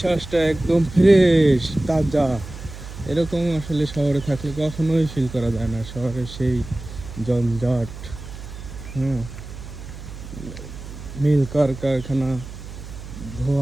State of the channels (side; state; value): right; noise; hum, 12 dB below the sound